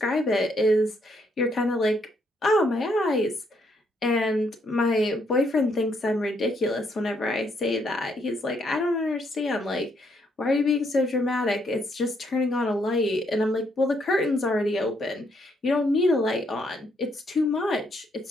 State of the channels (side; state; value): both; normal; correlation 0.73